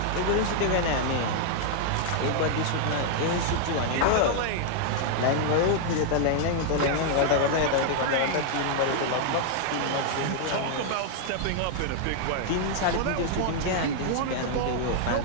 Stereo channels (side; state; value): both; different; correlation 0.00